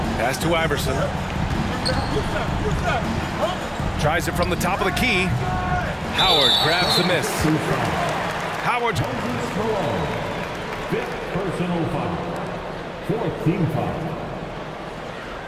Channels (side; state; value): both; identical; correlation 1.00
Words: Pass to Iverson. Tries it from the top of the key. Howard grabs the miss. Howard. Fifth personal foul. Fourth team foul.